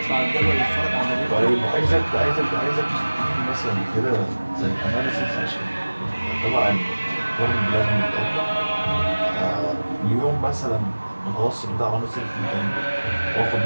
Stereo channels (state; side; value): inverted; both; correlation -1.00